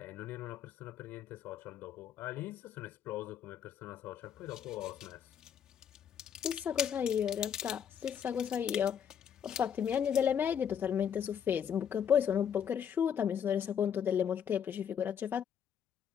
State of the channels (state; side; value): quieter; right; 8.3 dB